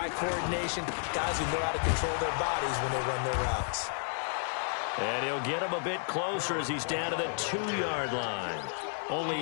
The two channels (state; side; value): silent; right; digital silence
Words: coordination, guys who know how to control their bodies when they run their routes. And he'll get him a bit closer as he's down to the 2-yard line.